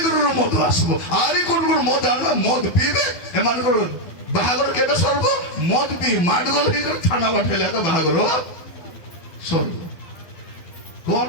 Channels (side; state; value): right; late; 12 ms